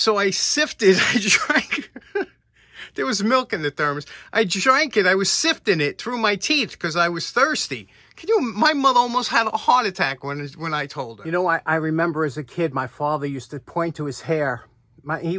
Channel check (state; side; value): identical; both; correlation 1.00